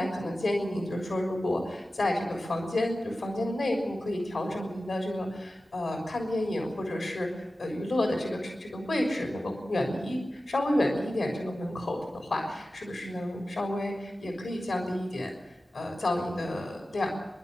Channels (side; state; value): both; normal; correlation 0.94